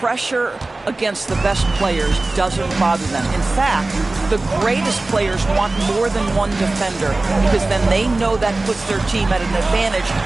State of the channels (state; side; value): quieter; left; 3.1 dB